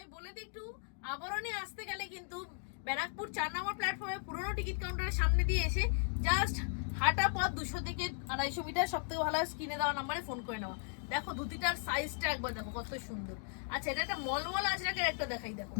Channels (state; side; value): silent; right; 53 dB below the other